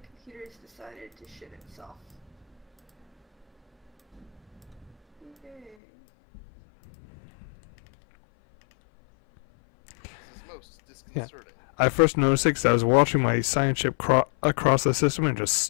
computer's decided to shit itself. Okay. This is most disconcerting. I first noticed it because I was watching my science ship across the system and just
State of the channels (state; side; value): drops out; right; at 5.8 s